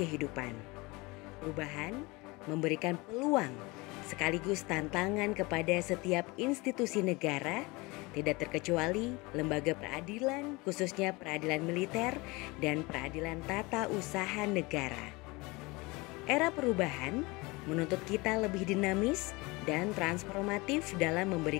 Perubahan memberikan peluang sekaligus tantangan kepada setiap institusi negara, tidak terkecuali lembaga peradilan, khususnya peradilan militer dan peradilan tata usaha negara. Era perubahan menuntut kita lebih dinamis dan transformatif dalam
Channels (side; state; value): right; quieter; 24.4 dB